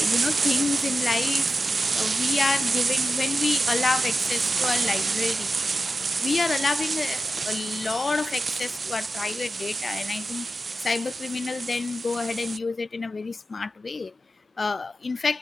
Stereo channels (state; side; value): normal; both; correlation 0.91